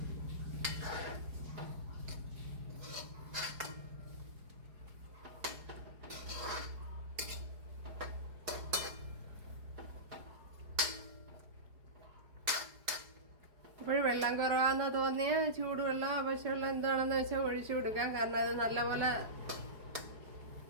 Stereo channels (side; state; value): left; late; 4.8 ms